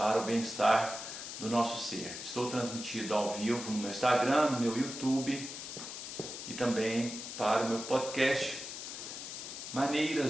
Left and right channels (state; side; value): noise; left; hiss, 8 dB below the sound